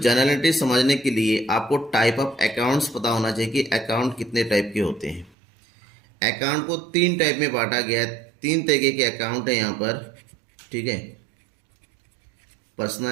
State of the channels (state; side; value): drops out; left; at 5.3 s